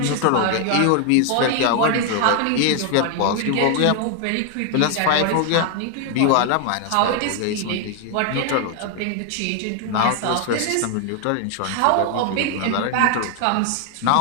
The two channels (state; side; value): different; both; correlation 0.00